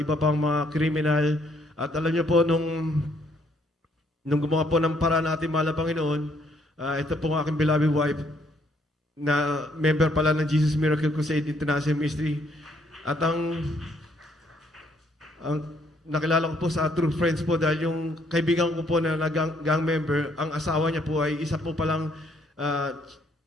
pang mga kriminal. At alam niyo po, nung gumawa po ng paraan natin, mahal na Panginoon, ito po ang aking beloved wife, na member pala ng Jesus Miracle Crusade International Ministry. At ang nakilala ko po sa True Friends po dahil yung kaibigan ko po na gang member, ang asawa niya po ay isa po palang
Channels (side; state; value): both; normal; correlation 0.68